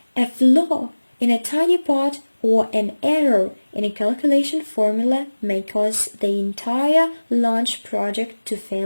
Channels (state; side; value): inverted; both; correlation -1.00